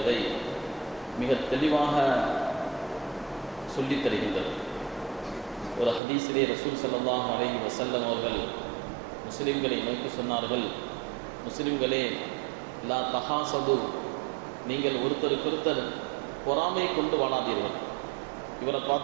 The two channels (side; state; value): left; drops out; at 6.0 s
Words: மிக தெளிவாக சொல்லித் தருகின்றது. ஒரு ஹதீஸிலே ரசூல் ஸல்லல்லாஹு அலைஹி வஸல்லம் அவர்கள் முஸ்லிம்களை நோக்கி சொன்னார்கள், முஸ்லிம்களே, லா தஹாசது, நீங்கள் ஒருத்தருக்கொருத்தர் பொறாமை கொண்டு வாழாதீர்கள். இவரை